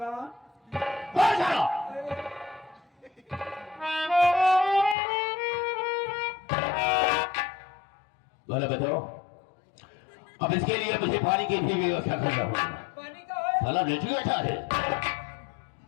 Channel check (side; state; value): right; drops out; at 5.0 s